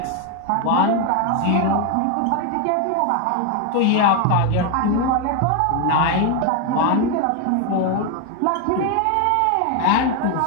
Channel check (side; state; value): both; different; correlation 0.01